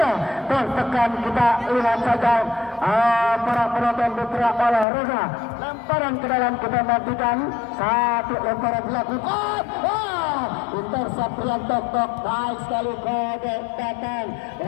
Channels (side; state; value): right; drops out; at 4.9 s